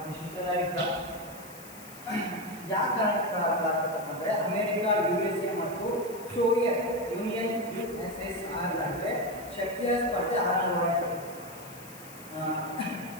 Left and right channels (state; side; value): noise; left; hiss, 17 dB below the sound